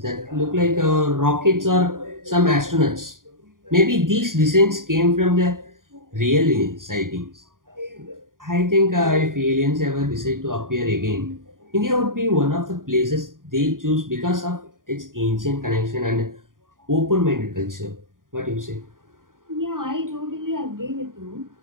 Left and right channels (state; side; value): late; left; 0.90 ms